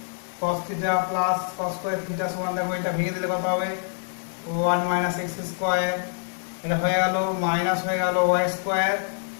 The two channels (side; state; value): right; silent; digital silence